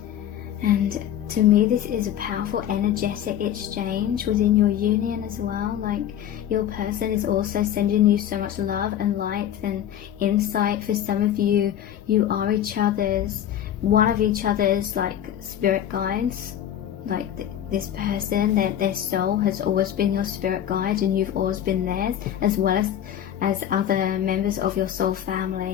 to me, this is a powerful energetic exchange within your union as well. Like, your person is also sending you so much love and light and insight. For some of you, you are one of each other's like spirit guides. Like this person, their soul has always been your spirit guide, and you've always been theirs, as well as other members of your soul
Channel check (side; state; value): right; quieter; 10.6 dB